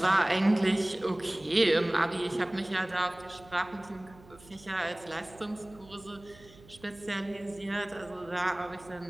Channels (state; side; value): noise; right; hum, 23 dB below the sound